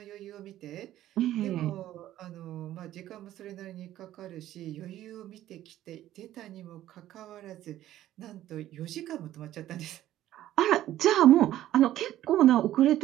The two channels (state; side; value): quieter; left; 13.4 dB